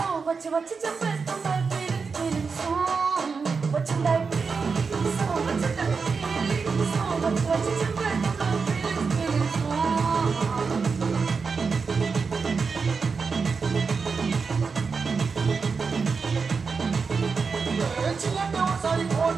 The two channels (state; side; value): quieter; left; 5.1 dB